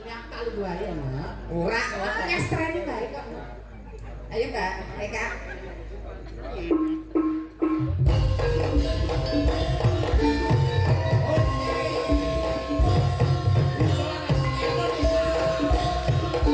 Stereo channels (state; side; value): identical; both; correlation 1.00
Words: tak lu wae ya. Ora Ngestreni bae kok. Ayo Mbak, Eka.